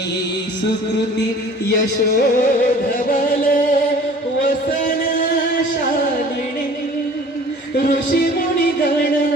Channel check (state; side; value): normal; both; correlation 0.47